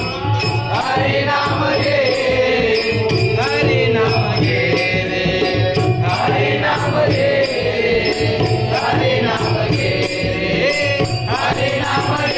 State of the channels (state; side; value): identical; both; correlation 1.00